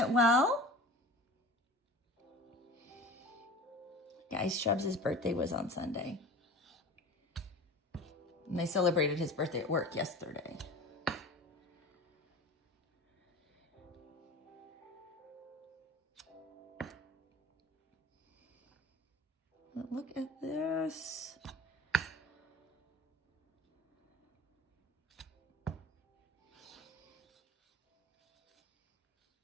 well. Guys, Shrubs' birthday was on Sunday. And they celebrated his birthday at work yesterday. But look at this.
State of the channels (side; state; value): both; normal; correlation 0.38